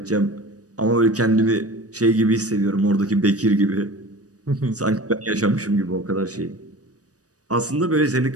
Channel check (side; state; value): left; late; 0.67 ms